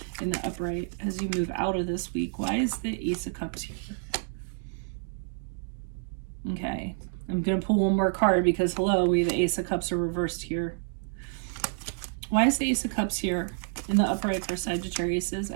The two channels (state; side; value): silent; left; 59 dB below the other